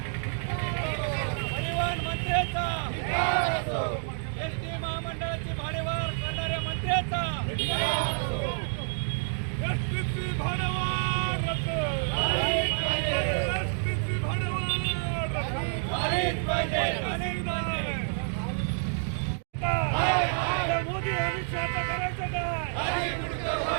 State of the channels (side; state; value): left; silent; digital silence